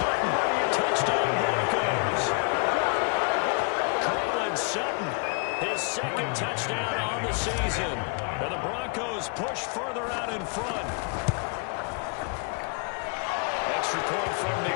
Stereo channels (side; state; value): right; quieter; 36.7 dB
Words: Touchdown Broncos. Sutton, his 2nd touchdown on the season. And the Broncos push further out in front. Extra point from